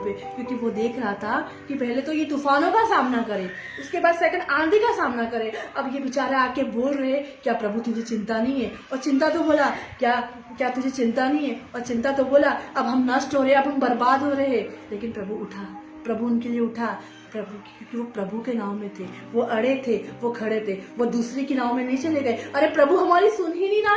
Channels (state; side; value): identical; both; correlation 1.00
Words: क्योंकि वो देख रहा था कि पहले तो ये तूफानों का सामना करे, उसके बाद सेकंड आंधी का सामना करे। अब ये बेचारा आके बोल रहे, क्या प्रभु तुझे चिंता नहीं है? और चिंता तो बोला, क्या तुझे चिंता नहीं है? और चिंता तो बोला, अब हम नष्ट हो रहे, अब हम बर्बाद हो रहे हैं। लेकिन प्रभु उनके लिए उठा, क्योंकि वो प्रभु के नाव में थे, वो अड़े थे, वो खड़े थे, वो दूसरे की नाव में नहीं चले गए। अरे प्रभु हमारी सुन ही नहीं रहा